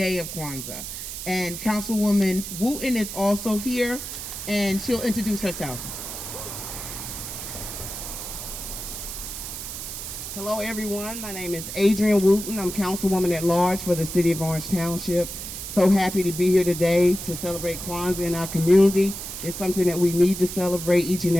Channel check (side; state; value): right; noise; hiss, 8 dB below the sound